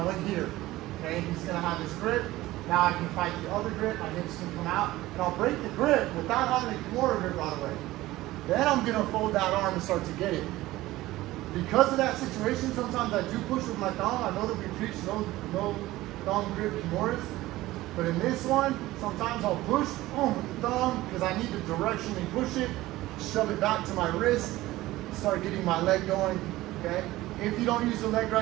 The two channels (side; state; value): left; quieter; 17.3 dB